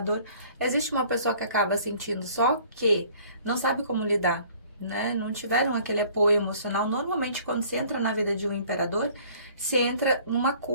existe uma pessoa que acaba sentindo, só que não sabe como lidar, né, não tiveram aquele apoio emocional. Normalmente, quando se entra na vida de um imperador, se entra numa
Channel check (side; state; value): both; inverted; correlation -0.54